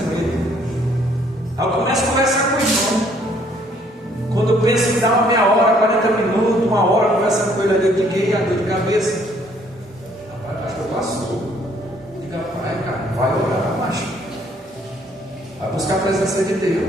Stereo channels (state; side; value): normal; both; correlation 0.63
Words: com ele. Aí eu começo a conversar com ele. Quando eu penso em dar uma meia hora, 40 minutos, uma hora conversando com ele ali, eu digo: a dor de cabeça. Rapaz, pastor, passou. Diga: pai, cara, vai orar, macho. Vai buscar a presença de